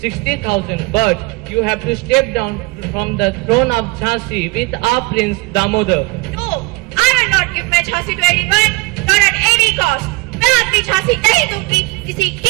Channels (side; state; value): left; quieter; 25.1 dB